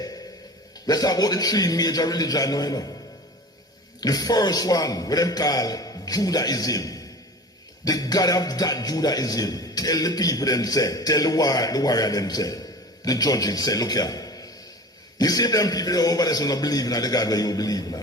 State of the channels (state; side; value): normal; both; correlation 0.37